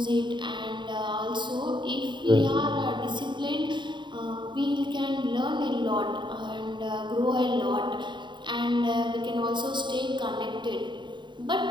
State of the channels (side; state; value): left; late; 0.23 ms